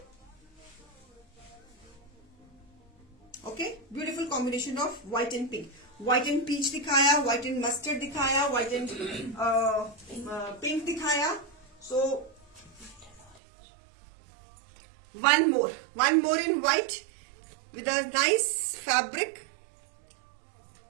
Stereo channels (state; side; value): drops out; left; at 13.4 s